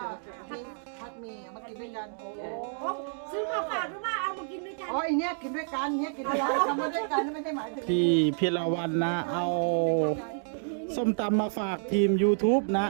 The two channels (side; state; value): left; silent; digital silence